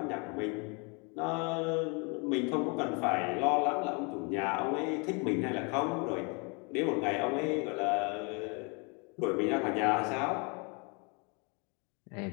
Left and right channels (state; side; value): quieter; right; 32.5 dB